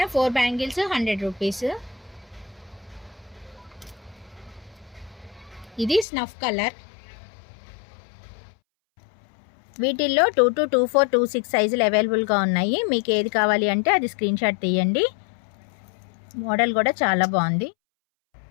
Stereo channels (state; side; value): drops out; right; at 6.1 s